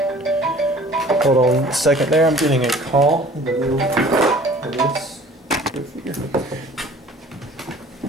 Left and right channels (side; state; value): both; normal; correlation 0.49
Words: Hold on a second there, I'm getting a call.